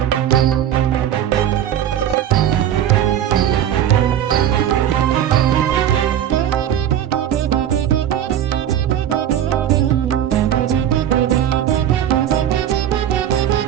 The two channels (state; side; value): quieter; left; 10.5 dB